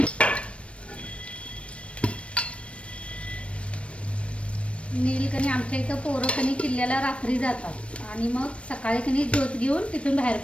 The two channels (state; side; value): late; right; 0.061 ms